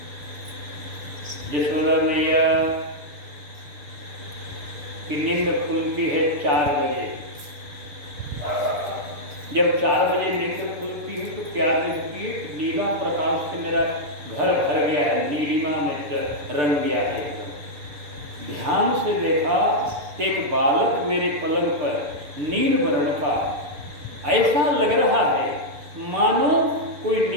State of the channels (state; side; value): late; left; 6.8 ms